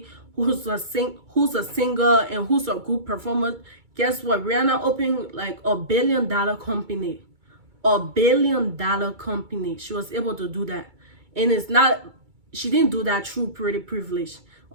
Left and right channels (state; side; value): late; left; 2.3 ms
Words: who's a singer and who's a good performer. Guess what? Rihanna opened like $1 billion company. $1 billion company. She was able to do that. And she didn't do that through pretty privilege.